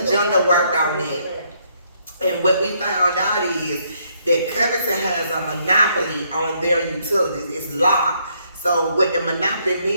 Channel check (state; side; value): inverted; both; correlation -0.71